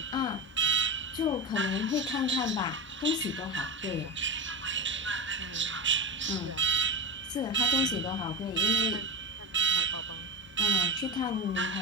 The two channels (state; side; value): normal; both; correlation 0.22